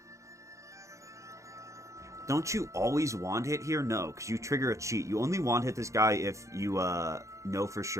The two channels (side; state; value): left; late; 0.15 ms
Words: Don't you always one-hit here? No, because you trigger a cheat. You only one-hit this guy if you know for